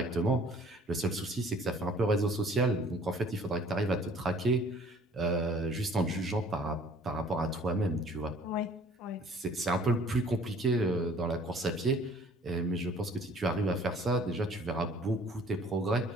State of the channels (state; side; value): normal; both; correlation 0.54